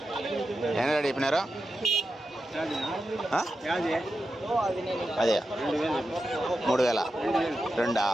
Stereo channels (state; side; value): normal; both; correlation 0.90